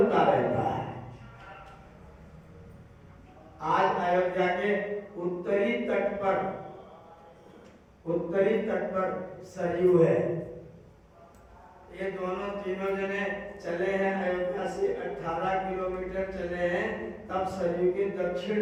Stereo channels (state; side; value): identical; both; correlation 1.00